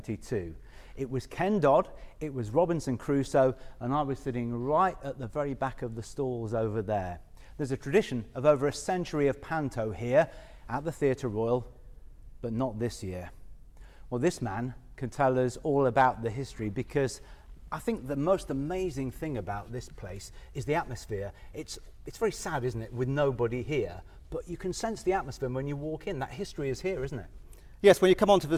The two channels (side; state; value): both; identical; correlation 1.00